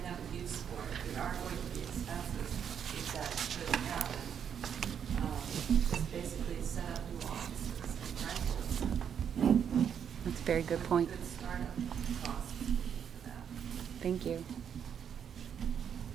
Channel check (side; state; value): left; quieter; 8.1 dB